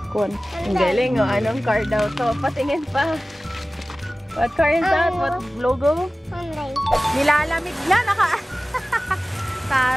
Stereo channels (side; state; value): both; normal; correlation 0.97